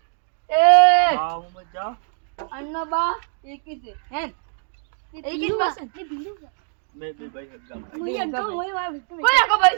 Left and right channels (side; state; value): left; silent; digital silence